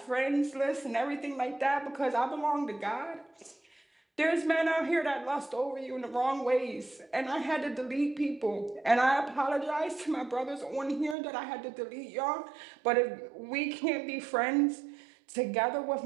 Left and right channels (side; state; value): left; drops out; at 11.2 s